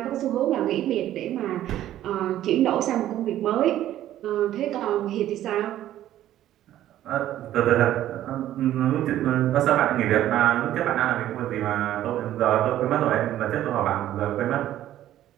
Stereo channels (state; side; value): quieter; left; 12.8 dB